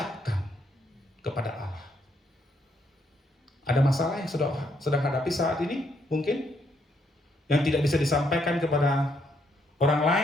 kepada Allah. Ada masalah yang sedang hadapi saat ini mungkin yang tidak bisa disampaikan kepada orang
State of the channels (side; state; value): both; normal; correlation 0.74